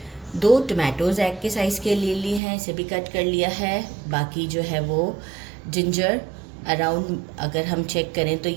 2 टमाटोज़ एग के साइज़ के लिए लिए हैं, इसे भी कट कर लिया है। बाकी जो है वो जिंजर अराउंड, अगर हम चेक करें तो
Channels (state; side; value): drops out; left; at 2.4 s